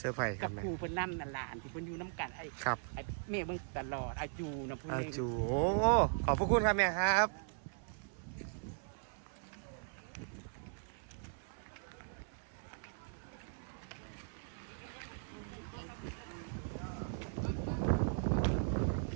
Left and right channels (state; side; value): silent; left; 52 dB below the other